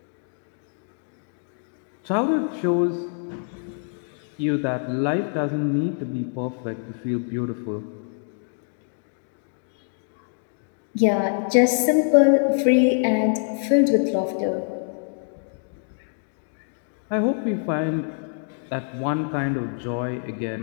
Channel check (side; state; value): right; silent; 59 dB below the other